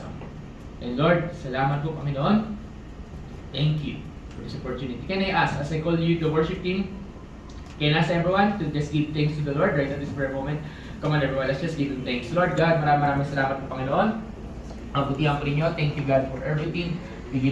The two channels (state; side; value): identical; both; correlation 1.00